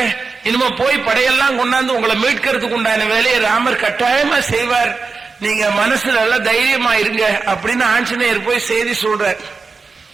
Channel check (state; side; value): quieter; left; 4.5 dB